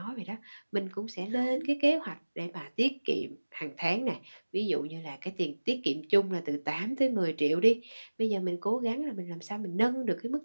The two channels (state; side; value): inverted; both; correlation -1.00